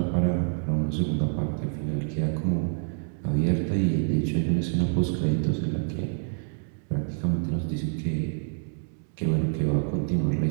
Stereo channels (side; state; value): left; silent; digital silence